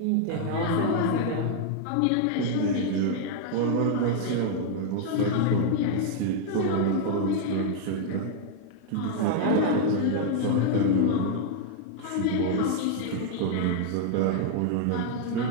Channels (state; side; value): different; both; correlation 0.00